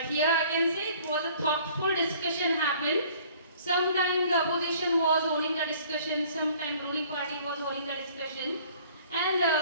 here I can say it was a thoughtful discussion happened. Sometimes the opposition was holding the discussion, sometimes ruling party was holding the discussion. And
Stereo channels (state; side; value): inverted; both; correlation -0.54